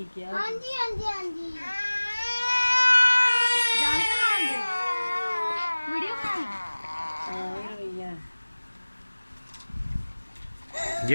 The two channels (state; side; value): inverted; both; correlation -1.00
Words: किया। हाँ जी हाँ जी हाँ जी जान के मान दे वीडियो कॉल